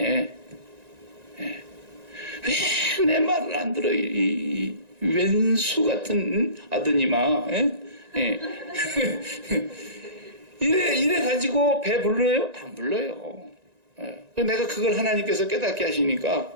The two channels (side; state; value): left; late; 1.9 ms